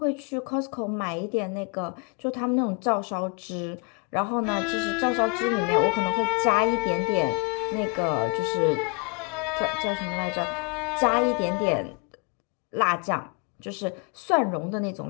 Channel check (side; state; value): right; quieter; 33.1 dB